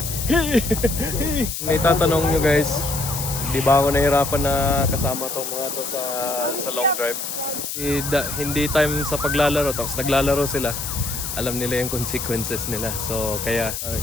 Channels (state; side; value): noise; left; hiss, 5 dB below the sound